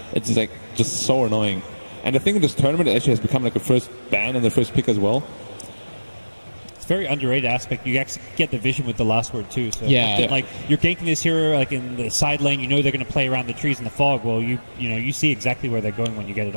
It's just so annoying. And I think in this tournament it actually has become like a first ban and the first pick as well. It's a very underrated aspect. You actually get the vision with the last word too. So like you're ganking this hero like in the side lane, you know they're going to play around the trees in the fog. Well, you see exactly where they're going when you get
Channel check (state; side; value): inverted; both; correlation -1.00